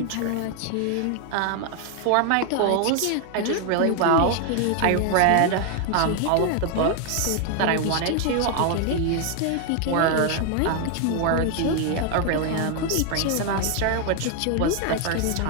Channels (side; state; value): both; different; correlation 0.01